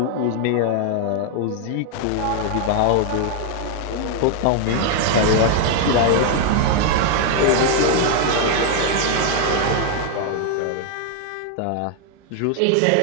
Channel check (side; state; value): both; different; correlation 0.00